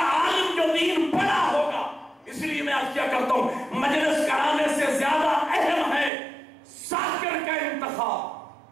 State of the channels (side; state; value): left; drops out; at 6.1 s